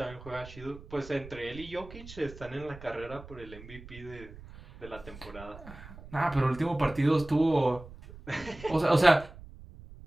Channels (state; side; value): noise; right; rumble, 17 dB below the sound